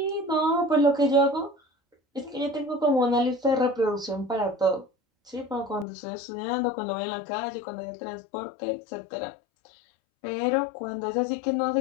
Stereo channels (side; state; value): right; drops out; at 5.9 s